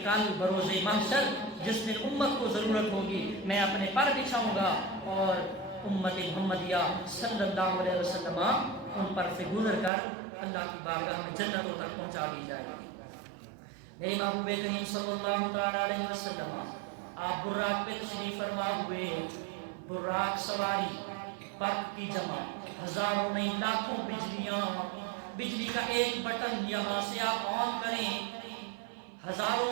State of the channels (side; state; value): left; drops out; at 9.9 s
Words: کل بروز محشر جس دن امت کو ضرورت ہوگی میں اپنے پر بچھاؤں گا اور امت محمدیہ صلی اللہ علیہ وسلم ان پر سے گزر کر اللہ کی بارگاہ میں جنتوں تک پہنچا دی جائے گی. میرے محبوب کریم صلی اللہ تعالی علیہ وسلم آپ براق پہ تشریف فرما ہوئے. براق سواری, برق کی جمع, ہزاروں نہیں لاکھوں بجلیاں, بجلی کا ایک بٹن یہاں سے آپ آن کریں, ہزاروں